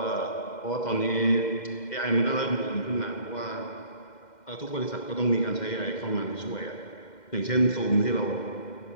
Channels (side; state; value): right; late; 2.1 ms